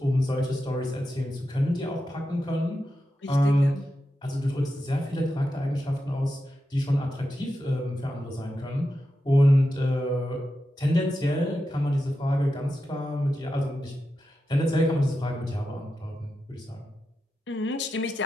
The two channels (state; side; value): normal; both; correlation 0.89